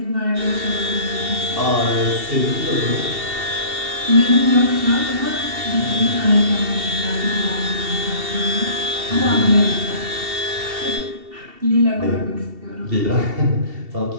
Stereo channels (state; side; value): late; left; 2.7 ms